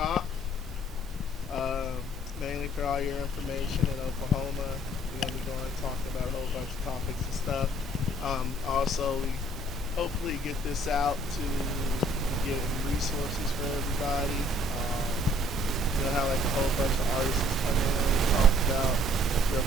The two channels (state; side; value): normal; both; correlation 0.59